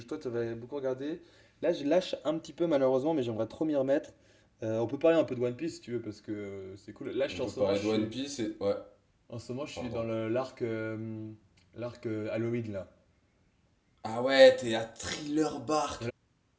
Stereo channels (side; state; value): both; identical; correlation 1.00